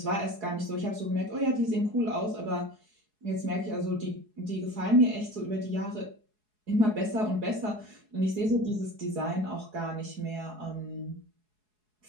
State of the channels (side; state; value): left; late; 4.7 ms